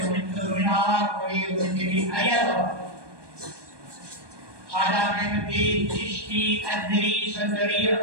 জমিনার করে জমিতে আয়াত Ada Ahmadi Chishti Adri Sandari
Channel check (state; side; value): late; left; 1.2 ms